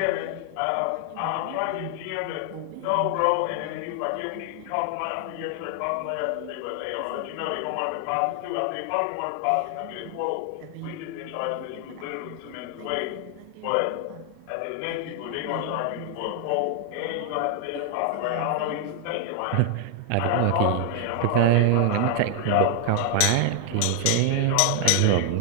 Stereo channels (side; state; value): both; different; correlation 0.00